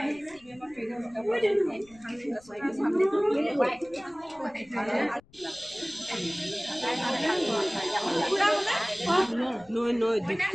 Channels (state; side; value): noise; left; rumble, 28 dB below the sound